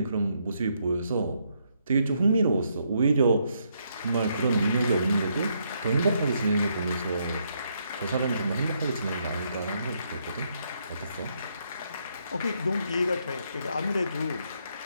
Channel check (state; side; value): inverted; both; correlation -0.75